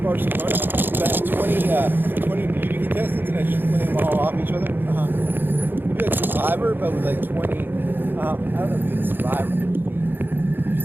About 20 beauty contestants, and I just play them all off each other. You'd be like Survivor, but with like 20. I don't know if you'd be Survivor.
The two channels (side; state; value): left; late; 0.097 ms